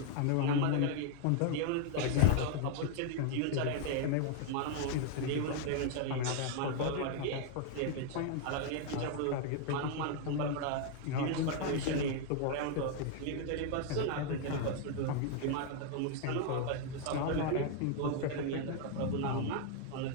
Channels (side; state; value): both; different; correlation 0.00